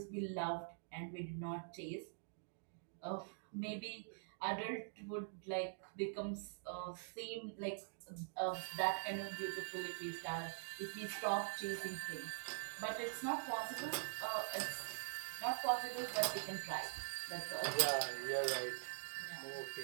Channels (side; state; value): left; silent; digital silence